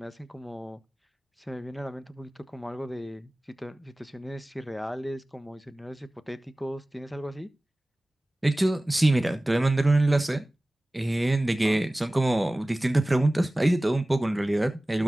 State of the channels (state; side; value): normal; both; correlation 0.98